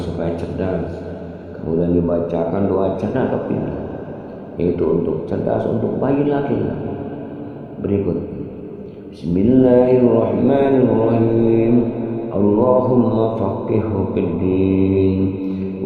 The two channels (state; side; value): identical; both; correlation 1.00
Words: cerdas? Kemudian dibacakan doa cerdas atau pintar, yaitu untuk cerdas untuk bayi laki-laki. Berikut. Bismillahirrahmanirrahim. Allahumma faqihhu fid din